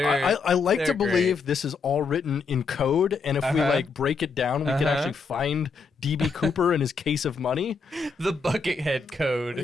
like to believe great. This is all written in code, and if we break it down, we can actually find DB Cooper and his case of money. The Buckethead code.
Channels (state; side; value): quieter; right; 4.7 dB